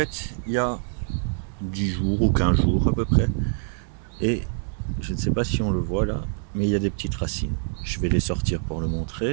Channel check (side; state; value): left; silent; 62 dB below the other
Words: il y a 10 jours ou 15 jours à peu près. Et je ne sais pas si on le voit là, mais il y a des petites racines. Je vais les sortir pour le